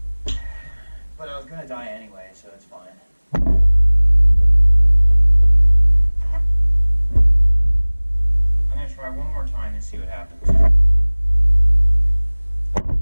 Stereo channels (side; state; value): both; inverted; correlation -1.00